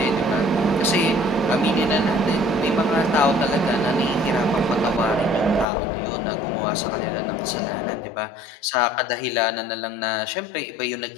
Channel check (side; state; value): right; drops out; at 5.7 s